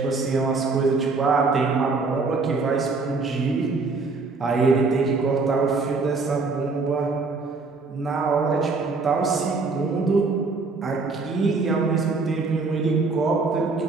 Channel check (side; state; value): left; quieter; 4.0 dB